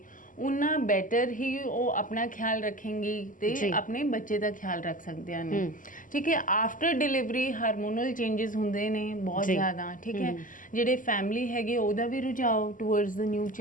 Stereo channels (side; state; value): right; late; 0.38 ms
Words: ਉਨਾ ਬੈਟਰ ਹੀ ਉਹ ਆਪਣਾ ਖਿਆਲ ਰੱਖੇਂਗੀ ਤੇ ਆਪਣੇ ਬੱਚੇ ਦਾ ਖਿਆਲ ਰੱਖ ਸਕਦੇ ਨੇ। ਠੀਕ ਹੈ, ਆਫਟਰ ਡਿਲੀਵਰੀ ਹਾਰਮੋਨਲ ਚੇਂਜਸ ਹੁੰਦੇ ਨੇ ਬਹੁਤ ਜ਼ਿਆਦਾ। ਠੀਕ ਹੈ, ਜਿਹੜੇ ਫੈਮਿਲੀ ਹੈਗੇ ਉਹਦਾ ਵੀ ਰੁਝਾਓ towards the new